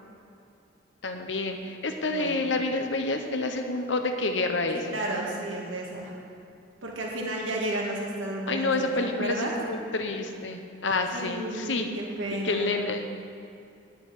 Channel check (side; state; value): both; normal; correlation 0.07